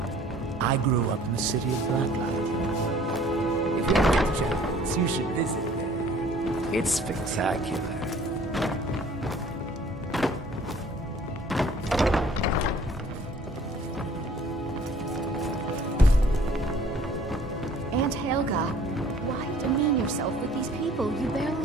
I grew up in the city of Blacklight. If you ever get the chance, you should visit there. It's spectacular. Aunt Helga, why demean yourself with these people you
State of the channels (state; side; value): normal; both; correlation 0.54